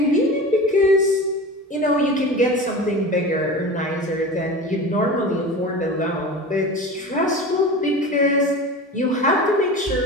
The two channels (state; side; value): normal; both; correlation 0.32